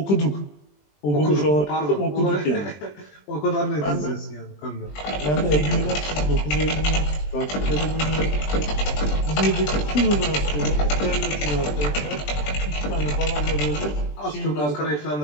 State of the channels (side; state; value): right; late; 20 ms